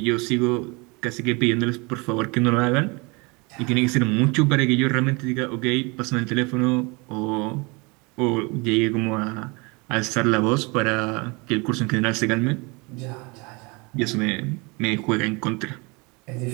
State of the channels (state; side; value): quieter; left; 28.1 dB